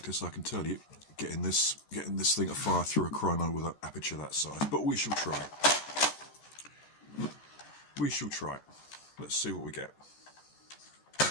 I can tell you, getting this thing to fire through a chrono with an aperture that size. But we shall try. We shall try. Let's see what we get.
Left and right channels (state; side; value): late; right; 14 ms